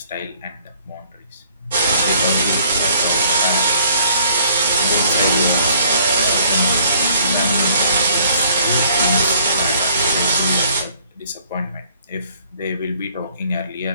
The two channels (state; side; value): inverted; both; correlation -0.61